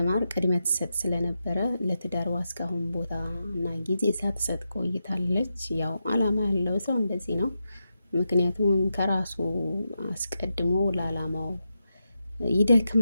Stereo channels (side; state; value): both; inverted; correlation -0.87